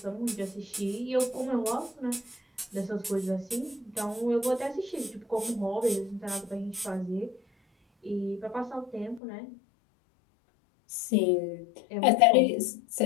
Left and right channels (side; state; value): right; drops out; at 9.2 s